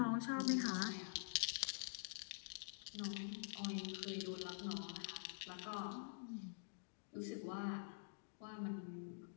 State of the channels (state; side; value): silent; right; digital silence